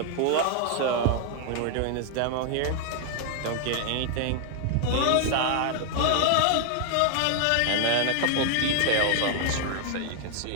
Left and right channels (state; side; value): different; both; correlation 0.00